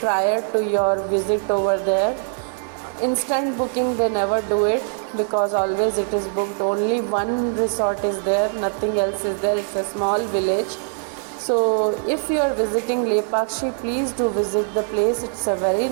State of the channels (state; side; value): silent; left; 64 dB below the other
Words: to your visit over there. Instant booking they never do it, because always it is booked. Only one resort is there, nothing else is there. It's a small village. So if you are visiting Lepakshi, please do visit the place. It's a very